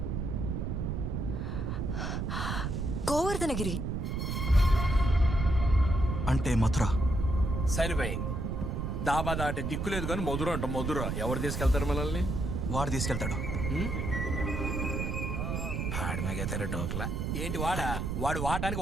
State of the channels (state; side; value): noise; right; rumble, 2 dB below the sound